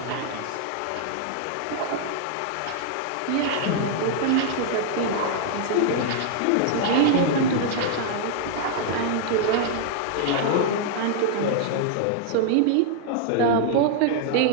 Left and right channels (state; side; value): different; both; correlation -0.01